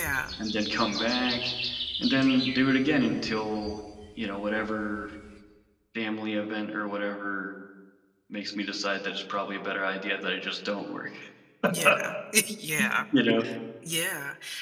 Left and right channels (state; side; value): identical; both; correlation 1.00